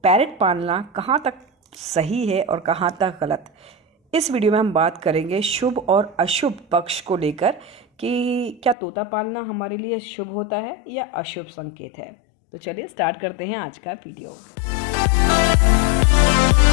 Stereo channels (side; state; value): right; drops out; at 8.8 s